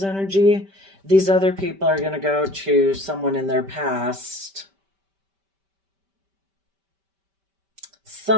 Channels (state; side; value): late; left; 5.1 ms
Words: energy, these other people are going to go to someone in their past.